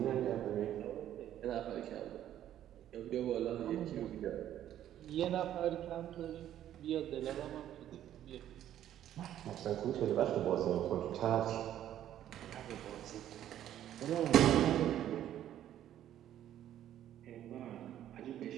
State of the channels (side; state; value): left; quieter; 11.6 dB